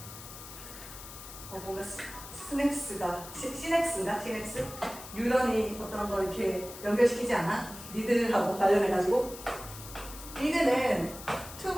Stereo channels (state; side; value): noise; left; hiss, 14 dB below the sound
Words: 뭔가 시냅스가 시냅스? 뉴런이 어떤 걸 이렇게 연결시키지 않아? 니들하고 관련해가지고 니들은